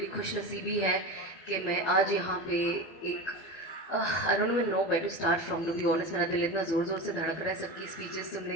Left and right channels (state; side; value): late; right; 12 ms